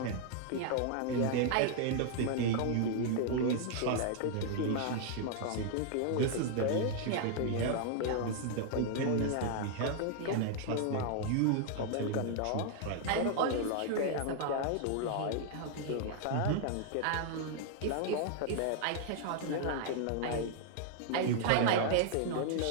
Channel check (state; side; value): different; both; correlation 0.00